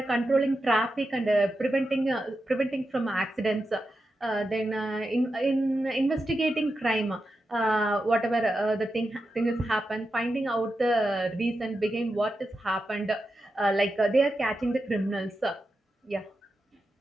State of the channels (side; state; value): both; normal; correlation 0.89